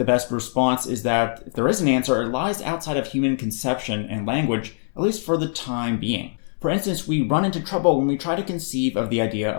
best response is that if there is an answer, it lies outside of human conception and language, at least for the time being. For instance, we run into trouble when we try to conceive of the idea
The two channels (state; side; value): silent; right; 63 dB below the other